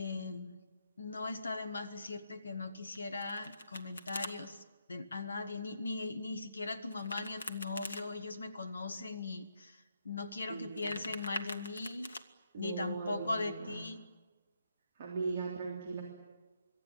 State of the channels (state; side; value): inverted; both; correlation -0.78